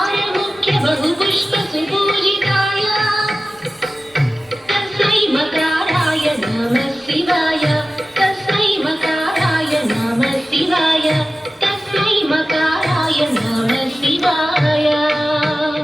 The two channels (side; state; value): both; normal; correlation 0.95